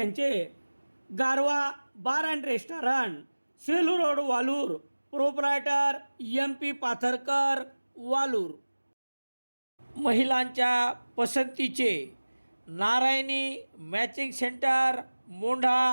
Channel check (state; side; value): inverted; both; correlation -1.00